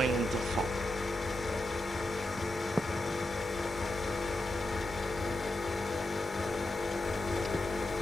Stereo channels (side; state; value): both; normal; correlation 0.87